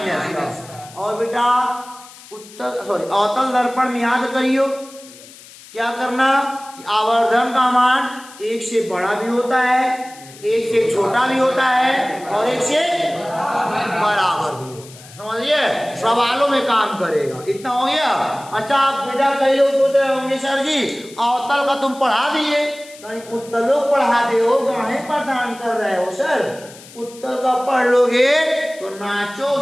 का। और बेटा अवतल दर्पण में याद करियो क्या करना कि आवर्धन का मान 1 से बड़ा भी होता है, 1 से छोटा भी होता है और 1 से बराबर भी होता है। समझिए, सवालों में काम करेगा। इतना हो गया। अच्छा आप बेटा कई लोग सोच रहे होंगे सर जी अवतल का तुम पढ़ा दिए, उत्तलों पढ़ा दे हो, गाने प्रदान कर रहे हो सर। उत्तल का पढ़ लोगे तो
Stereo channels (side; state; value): left; noise; hiss, 20 dB below the sound